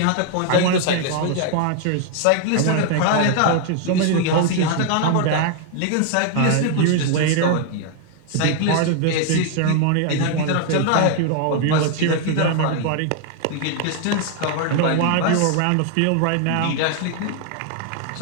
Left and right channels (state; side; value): different; both; correlation 0.00